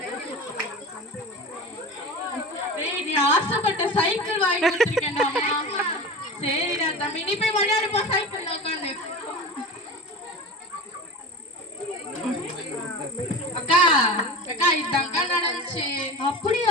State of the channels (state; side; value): normal; both; correlation 0.31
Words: டேய் நீ ஆசைப்பட்ட சைக்கிள் வாங்கி கொடுத்துருக்கேன்டா. சரிடா தம்பி, நீ போய் விளையாடுப்பா சைக்கிள்ல உட்காந்து. அக்கா அக்கா இதாங்க நடந்துச்சு.